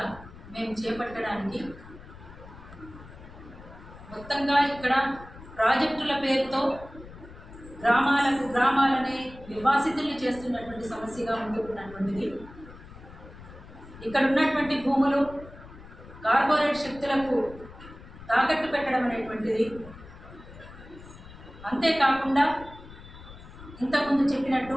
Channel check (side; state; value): left; noise; rumble, 17 dB below the sound